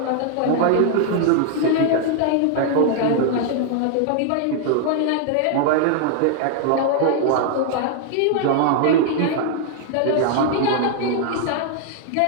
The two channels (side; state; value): both; different; correlation 0.00